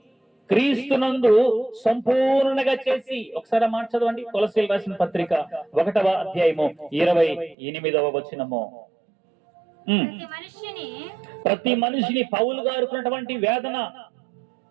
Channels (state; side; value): drops out; left; at 7.6 s